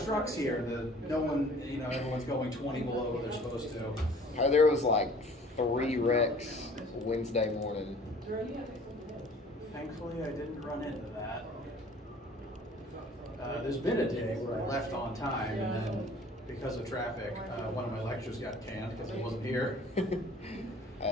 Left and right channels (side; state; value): both; normal; correlation 0.50